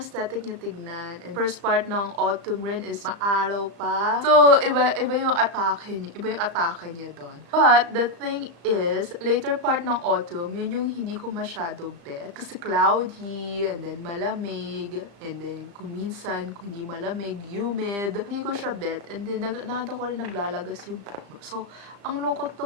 aesthetic niya tignan. And first part ng autumn rin is maaraw pa. So, iba yung atake niya. Iba yung atake niya doon. But, the thing is, later part ng autumn, yun yung hindi ko masyado bet. Kasi cloudy, and then malamig, and then kung minsan, kung hindi malamig, humid. Hindi ko siya bet. And then, nakita ko rin naglalagas yung puno. So, ang lungkot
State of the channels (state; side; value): late; left; 35 ms